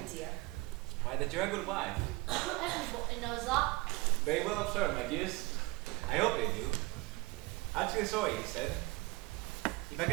dear? Why, that you're a good wife. Everybody knows that. Very well observed, my dears. I hope they do. Actually sorry, he said. If I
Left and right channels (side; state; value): left; quieter; 23.3 dB